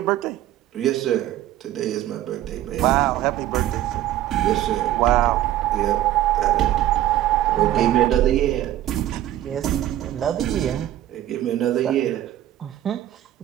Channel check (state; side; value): quieter; left; 13.3 dB